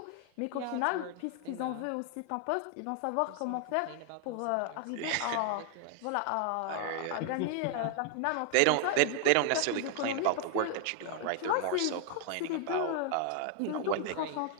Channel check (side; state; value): both; different; correlation 0.00